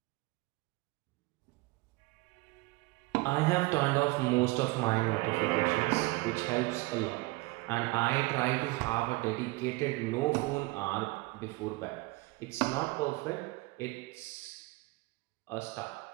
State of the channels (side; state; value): left; quieter; 22.9 dB